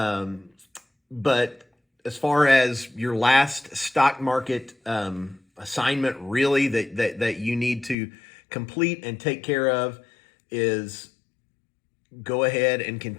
but as far as your last stock market assignment, really that you need to complete and take care of is go ahead and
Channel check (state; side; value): drops out; right; at 8.0 s